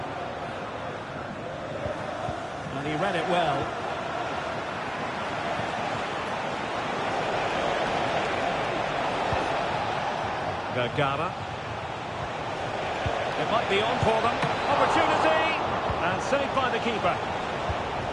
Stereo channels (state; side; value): identical; both; correlation 1.00